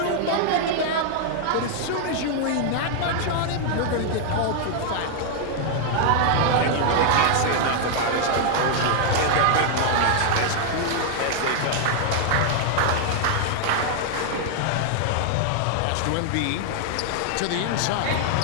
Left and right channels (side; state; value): both; different; correlation -0.01